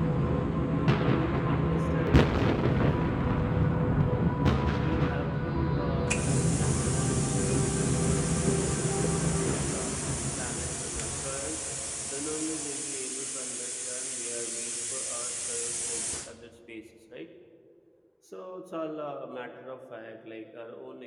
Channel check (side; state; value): both; identical; correlation 1.00